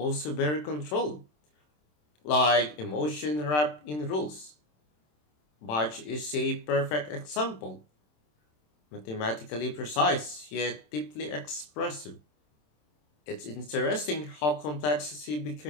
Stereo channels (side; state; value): right; late; 27 ms